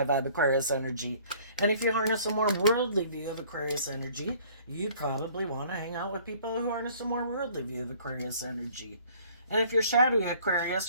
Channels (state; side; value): inverted; both; correlation -0.55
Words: vibe Aquarius energy. And if you harness a more worldly view of Aquarius energy, you probably want to hang out with people who harness a more worldly view of Aquarius energy. And if you're shadowy Aquarius,